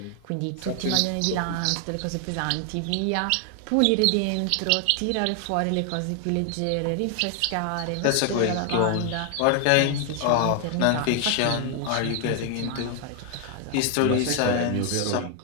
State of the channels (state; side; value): different; both; correlation 0.00